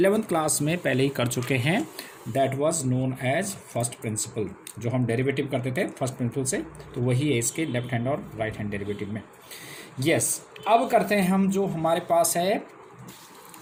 class में पहले ही कर चुके हैं। That was known as first principle. जो हम डेरिवेटिव करते थे फर्स्ट प्रिंसिपल से, तो वही है इसके लेफ्ट हैंड और राइट हैंड डेरिवेटिव में। यस, अब करते हैं हम जो हमारे पास है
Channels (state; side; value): identical; both; correlation 1.00